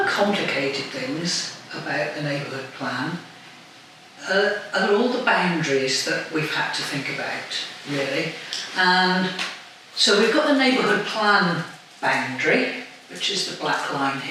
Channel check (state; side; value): identical; both; correlation 1.00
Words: complicated things about the neighbourhood plan are all the boundaries that we've had to think about, really. And so we've got the neighbourhood plan boundary, which is the black line